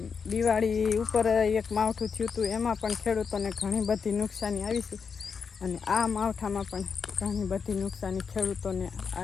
દિવાળી ઉપર એક માવઠું થયું હતું એમાં પણ ખેડૂતોને ઘણી બધી નુકસાની આવી છે. અને આ માવઠામાં પણ ઘણી બધી નુકસાની ખેડૂતોને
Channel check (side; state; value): right; quieter; 5.9 dB